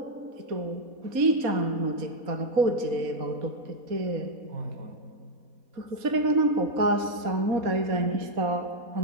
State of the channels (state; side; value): late; left; 4.1 ms